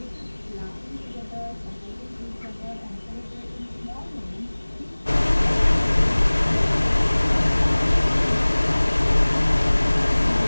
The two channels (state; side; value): inverted; both; correlation -1.00